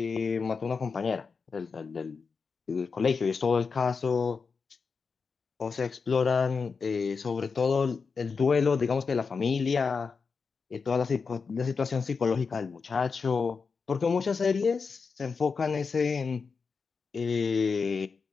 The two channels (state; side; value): quieter; right; 5.1 dB